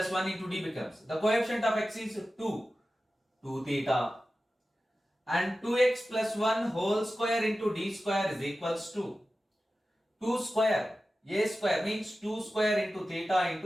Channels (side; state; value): both; normal; correlation 0.94